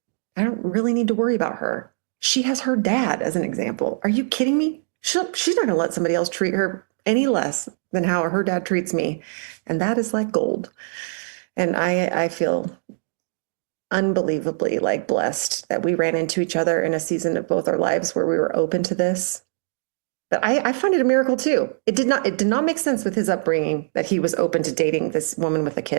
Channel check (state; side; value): silent; left; digital silence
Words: really need to worry about her. She has her dad as an example. Are you kidding me? She's not going to let somebody else treat her any less than how her dad treats me. And that is like gold. And I feel unbelievably like blessed that we ran into each other in a season of both our lives where we were open to this. But I find it a miracle too. It did not make sense with his upbringing that he was open to dating this woman with a